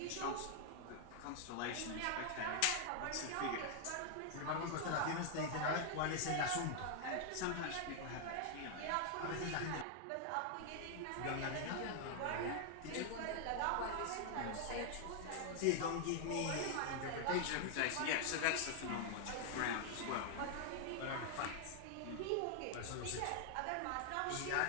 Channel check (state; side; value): different; both; correlation 0.00